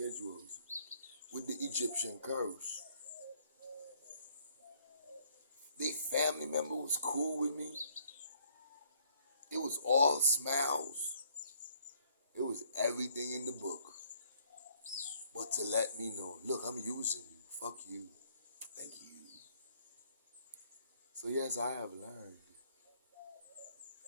with the Egyptian curse. They family member was cool with me. It was all smiles. It was everything in the book. But to let me know, look, I'm using you. Fuck you. Thank you. So yes, I have learned.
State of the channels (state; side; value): inverted; both; correlation -0.64